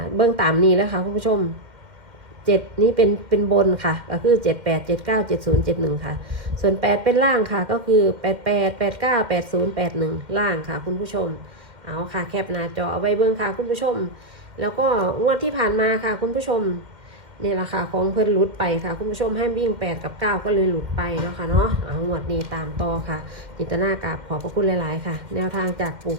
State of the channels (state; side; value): late; left; 2.1 ms